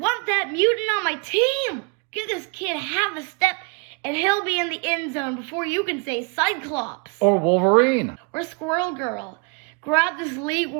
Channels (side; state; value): left; quieter; 32.5 dB